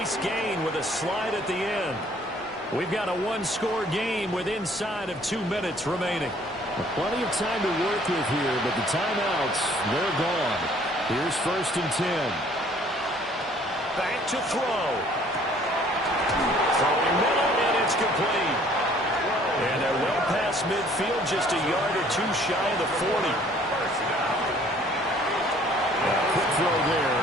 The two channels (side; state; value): both; normal; correlation 0.58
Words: gain with a slide at the end. We've got a one-score game with inside of 2 minutes remaining. Plenty of time to work with here, but the timeouts, they're gone. Here's 1st and 10. Back to throw. Throwing middle, and it's complete. And they're well past midfield, just a yard or two shy of the 40. Quick throw